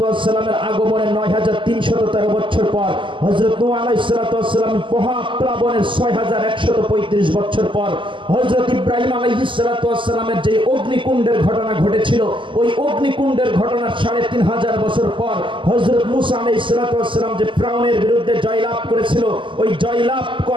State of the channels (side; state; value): left; late; 0.25 ms